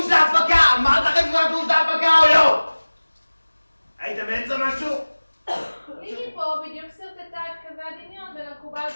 להפקה! אמרת לכם שהוא שדוש להפקה או לא? היית באמצע משהו? ליגי פה בדיוק סרטטה את קווי הדמיון בין המקובל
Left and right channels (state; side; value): inverted; both; correlation -1.00